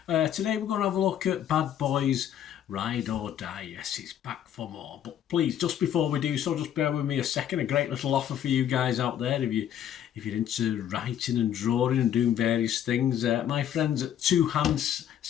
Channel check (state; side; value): quieter; right; 10.2 dB